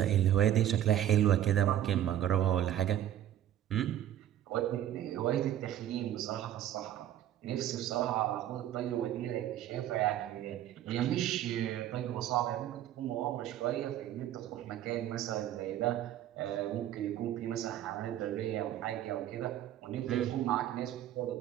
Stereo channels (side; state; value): left; quieter; 11.7 dB